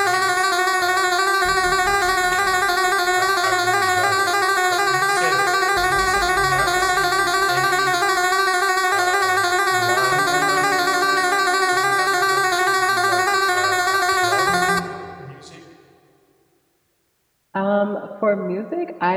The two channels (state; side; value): identical; both; correlation 1.00